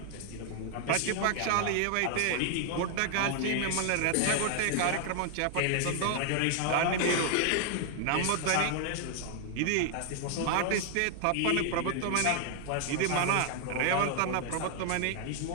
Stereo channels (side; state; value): both; different; correlation 0.00